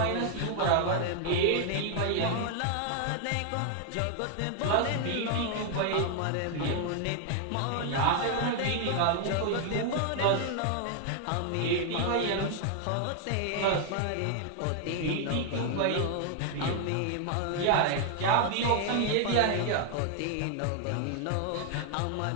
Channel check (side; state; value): both; different; correlation 0.00